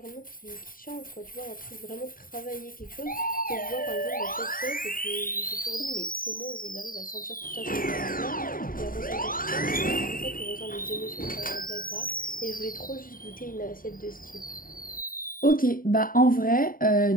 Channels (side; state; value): right; late; 0.41 ms